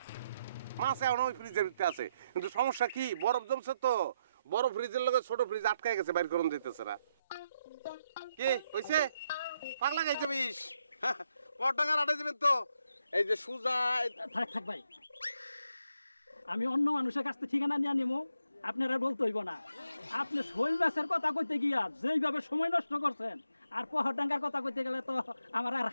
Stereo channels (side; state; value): both; inverted; correlation -0.80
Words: মাছ এখন ওই ফ্রিজের ভিতরে আছে, কিন্তু সমস্যা কি, বরফ জমছে তো, বড় ফ্রিজের লগে ছোট ফ্রিজ আটকায় গেছে, বাইর করুন দিতেছে না। কি হয়েছে? পাগলা খাইছে বিষ। পাটাঙ্গার হাটে যাবেন তো? এই যে সুজা। থাক ভাই, আমি অন্য মানুষের কাছ থেকে ঠিকানা নিয়ে নিবো, আপনারা বলতে হইব না। আপনি শৈল মাছের কথা কইতে গিয়া যেইভাবে সময় নষ্ট করছেন, আর পাটাঙ্গার কথা কইতে গেলে তো আমার আর